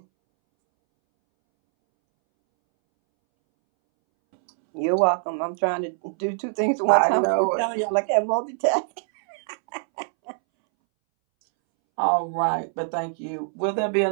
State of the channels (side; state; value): left; silent; 63 dB below the other